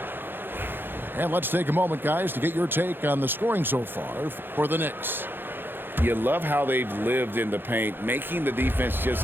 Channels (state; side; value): late; left; 0.10 ms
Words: And let's take a moment, guys, to get your take on the scoring so far for the Knicks. You love how they've lived in the paint, making the defense just